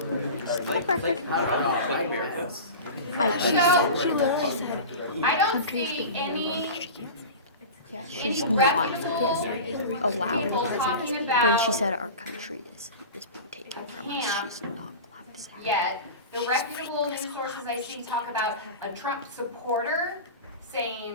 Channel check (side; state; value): both; inverted; correlation -0.30